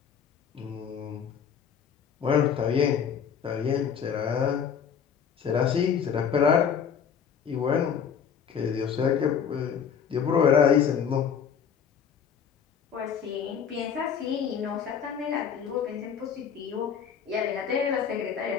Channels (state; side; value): quieter; right; 7.5 dB